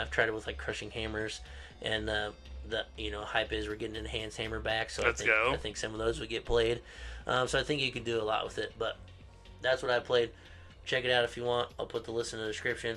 I've tried it with like Crushing Hammers, and the hype is we're getting Enhanced Hammer back, so I think some of those would get played. So I think you could do a lot with it. But that's what I played. Check it out if you want. I'll put the list in the description.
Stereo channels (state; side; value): identical; both; correlation 1.00